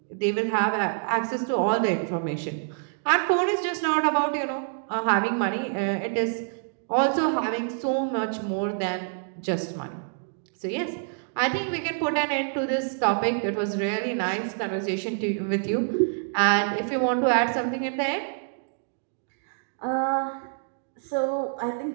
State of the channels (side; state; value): left; silent; digital silence